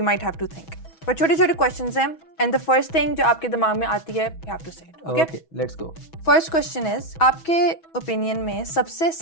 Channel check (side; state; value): right; late; 6.2 ms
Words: might have to think. पर छोटे छोटे क्वेश्चंस हैं, एंड द फर्स्ट थिंग जो आपके दिमाग में आती है you have to say it. Okay, let's go. First question is, आपके ओपिनियन में सबसे